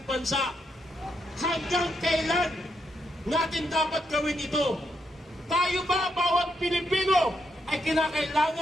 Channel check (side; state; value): both; normal; correlation 0.80